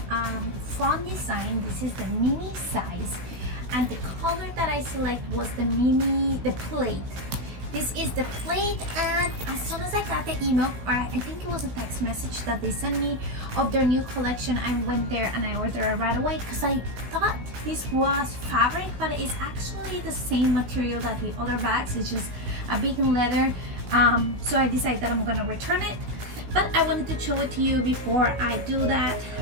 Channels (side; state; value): left; late; 16 ms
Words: Fawn design. This is the mini size, and the color that I select was the Plaid. This is the Plaid, and as soon as I got the email, or I think it was a text message that they sent me of their new collection, I went there and I ordered it right away because I thought this was fabric, but it's actually the same material that the other bags. It's just a vegan leather. So I decided that I'm gonna return it, but I wanted to show it to you before I do that.